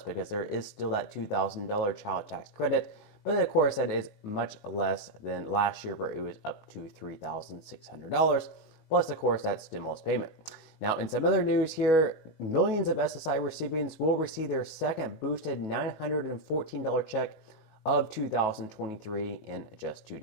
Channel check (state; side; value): late; right; 19 ms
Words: there is still that $2,000 child tax credit, but of course that is much less than last year where it was up to $3,600, plus of course that stimulus payment. Now, in some other news here, millions of SSI recipients will receive their second boosted $914 check of 2023 in just 2